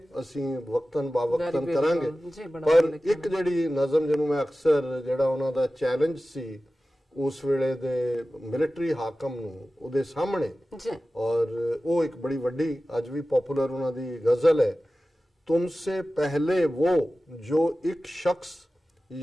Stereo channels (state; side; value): normal; both; correlation 0.95